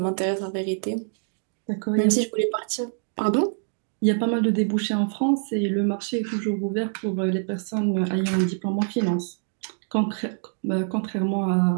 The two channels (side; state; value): left; silent; 62 dB below the other